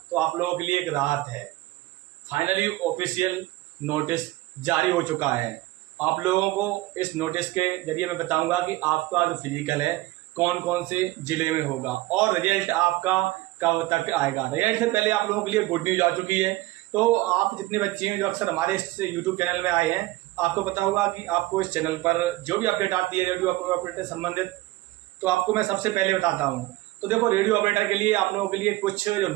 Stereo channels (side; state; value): left; quieter; 18.3 dB